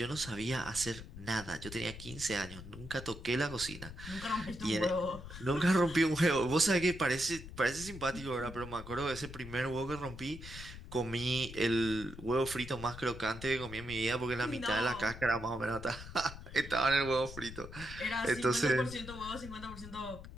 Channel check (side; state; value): left; noise; rumble, 12 dB below the sound